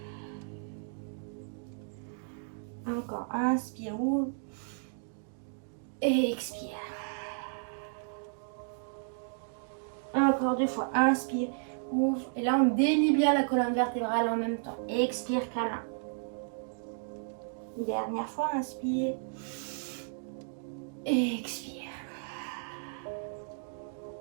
Encore, inspire, ouvre. Et expire. Encore 2 fois, inspire, ouvre. Et là, on délie bien la colonne vertébrale en même temps. Expire, câlin. Dernière fois, inspire. Et expire.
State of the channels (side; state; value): left; silent; digital silence